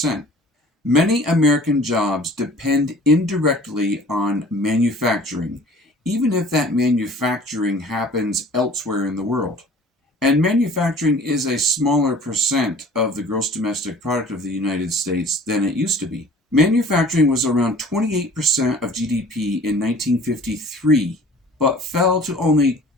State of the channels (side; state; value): both; normal; correlation 0.48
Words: Many American jobs depend indirectly on manufacturing, even if that manufacturing happens elsewhere in the world. And manufacturing is a smaller percent of the gross domestic product of the United States than it used to be. Manufacturing was around 28% of GDP in 1953, but fell to only